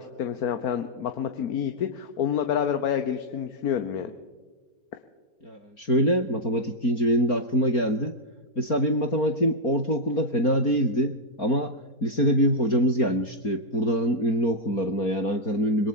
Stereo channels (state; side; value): late; right; 4.3 ms